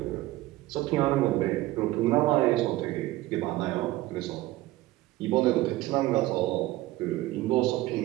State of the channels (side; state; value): left; quieter; 17.2 dB